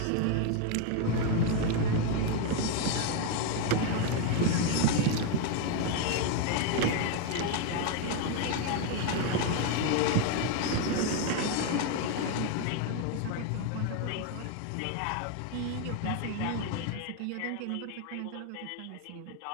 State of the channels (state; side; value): different; both; correlation 0.01